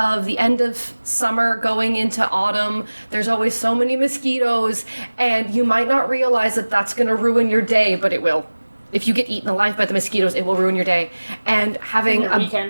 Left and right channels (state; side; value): inverted; both; correlation -1.00